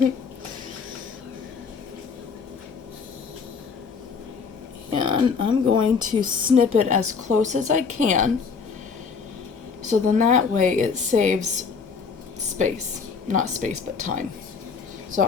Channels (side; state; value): right; quieter; 5.4 dB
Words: And I'm going to snip it as close as I can, so then that way it saves space. Not space, but time. So